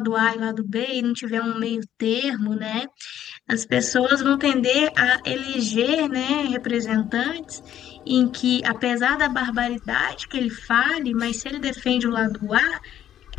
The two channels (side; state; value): right; quieter; 11.0 dB